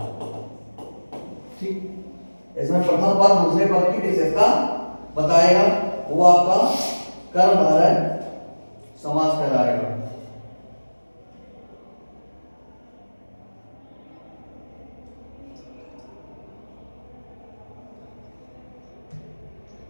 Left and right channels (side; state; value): both; inverted; correlation -1.00